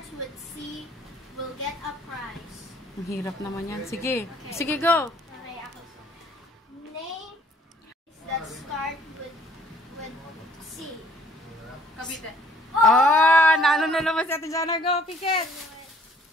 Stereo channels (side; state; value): both; normal; correlation 0.60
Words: with C will get a prize. Ang hirap naman yan. Sige. Sige, go. Okay, ako. Name that start with C. Cavite. Oh, naano na naman si Ate Jana. Go, Pikit.